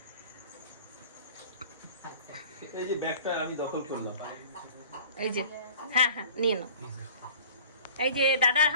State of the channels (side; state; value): both; inverted; correlation -0.45